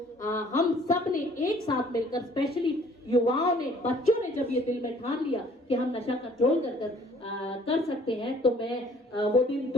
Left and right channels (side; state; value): both; normal; correlation 0.57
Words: हम सब ने एक साथ मिलकर, स्पेशली युवाओं ने, बच्चों ने जब ये दिल में ठान लिया कि हम नशा कंट्रोल कर सकते हैं, तो मैं वो दिन